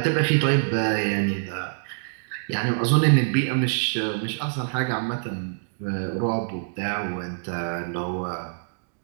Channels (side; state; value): left; silent; digital silence